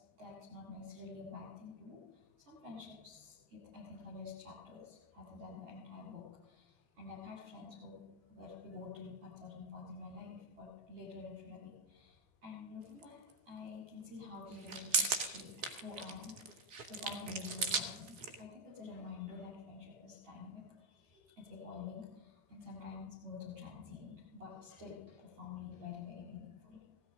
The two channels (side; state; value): left; late; 3.7 ms